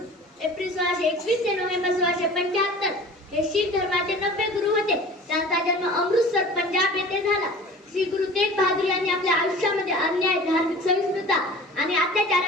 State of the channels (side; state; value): both; normal; correlation 0.42